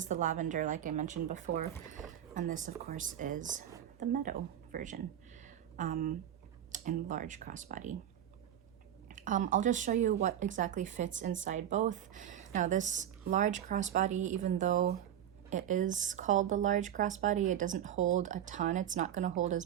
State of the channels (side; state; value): left; quieter; 10.6 dB